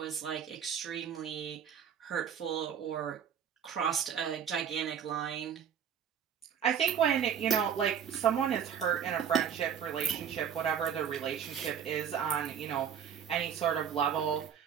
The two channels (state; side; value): quieter; left; 8.1 dB